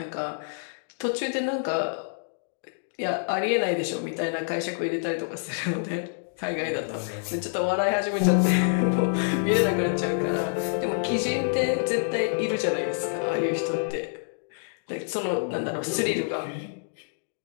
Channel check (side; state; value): right; silent; digital silence